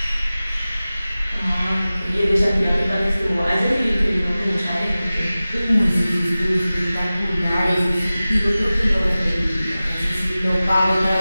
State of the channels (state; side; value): inverted; both; correlation -0.97